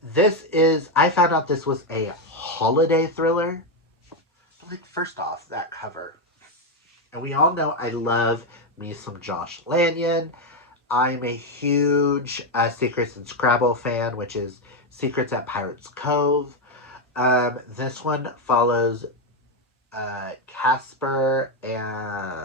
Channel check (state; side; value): normal; both; correlation 0.06